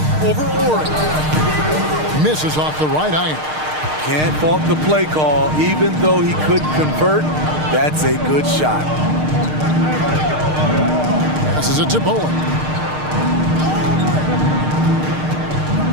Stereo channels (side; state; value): left; late; 6.5 ms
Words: Over Ori. Misses off the right iron. Can't fault the play call. Even though he couldn't convert, that's a good shot. Passes it to Bowen.